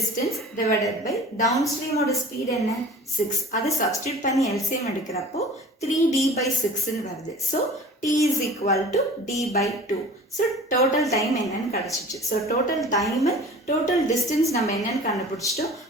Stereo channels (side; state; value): both; normal; correlation 0.42